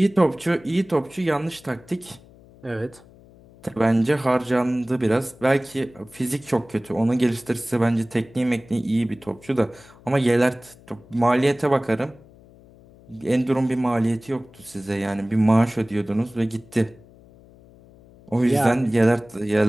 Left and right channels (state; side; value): noise; left; hum, 24 dB below the sound